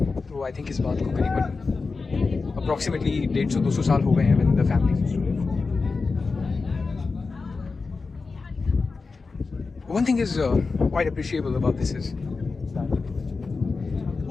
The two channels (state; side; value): quieter; right; 4.3 dB